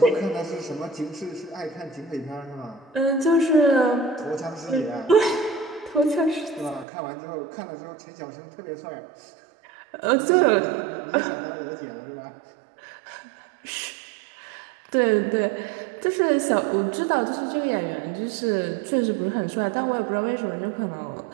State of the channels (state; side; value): drops out; left; at 6.9 s